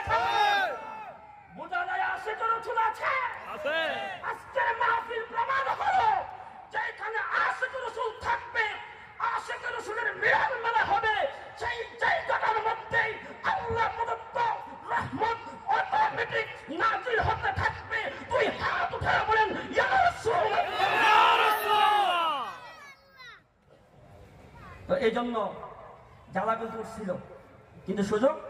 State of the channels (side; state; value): both; identical; correlation 1.00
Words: বোঝা যায় আসে কোনো চুল আছে। আজকের মাহফিল প্রমাণ হলো যেখানে আশিক রাসূল থাকবে, আশিক রাসূলের মিলন মেলা হবে, সেই জায়গাটার মধ্যে আল্লাহ প্রদত্ত রহমত অটোমেটিক নাজিল হতে থাকবে। তুই হাত উঠায় বলেন ইয়া রাসূলুল্লাহ। তো এই জন্য জ্বালা কিন্তু উঠছিল, কিন্তু সুযোগ